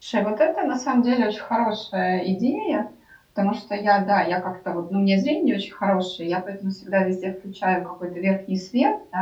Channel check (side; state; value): both; identical; correlation 1.00